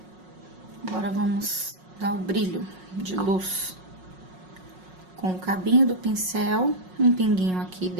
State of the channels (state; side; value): late; left; 5.5 ms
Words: Agora, vamos dar o brilho de luz. Com o cabinho do pincel, um pinguinho aqui